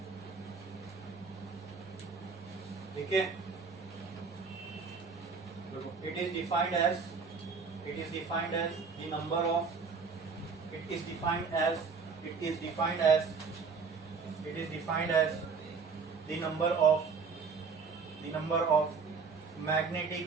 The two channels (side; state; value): left; quieter; 5.1 dB